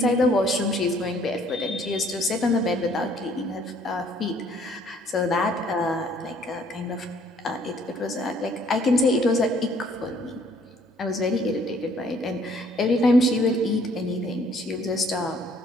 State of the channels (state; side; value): normal; both; correlation 0.62